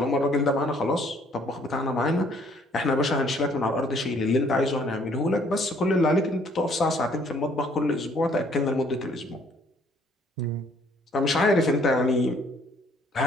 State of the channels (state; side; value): normal; both; correlation 0.62